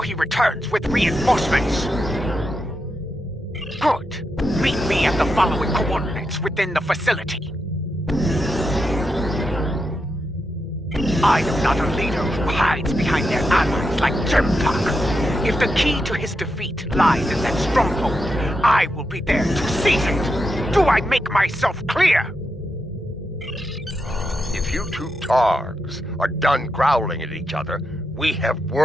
he returns with reinforcements. Good. Meet me at the following coordinates within the facility. I am not a leader who hides behind their allies like Jempak. If the key to his defeat lies in that stronghold, I will be there to seize it. Do I make myself clear? If you two Targs are done growling at each other, we have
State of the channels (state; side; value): normal; both; correlation 0.85